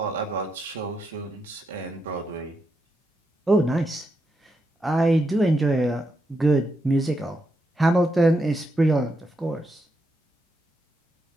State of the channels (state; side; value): normal; both; correlation 0.83